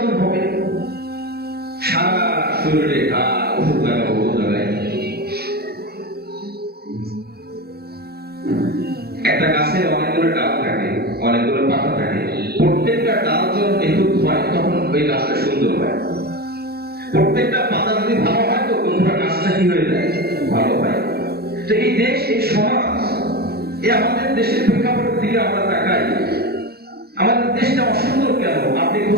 হবে? সারা শরীরে ঘা, ওষুধ লাগানো, ওষুধ লাগায়। একটা গাছের অনেকগুলো ডাল থাকে, অনেকগুলো পাতা থাকে, প্রত্যেকটা ডাল যখন নিখুঁত হয় তখন ওই গাছটা সুন্দর হয়। প্রত্যেকটা পাতা যদি ভালো হয় তো পুরো গাছটা কি হয়ে যায়? ভালো হয়। তো এই দেশ, এই সমাজ, এই আমাদের দেশের প্রেক্ষাপটের দিকে আমরা তাকাই, আমাদের দেশটা অসুন্দর কেন? আপনি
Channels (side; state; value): left; late; 0.46 ms